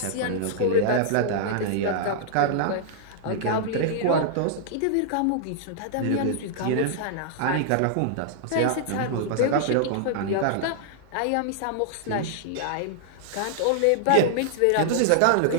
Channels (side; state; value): both; different; correlation -0.01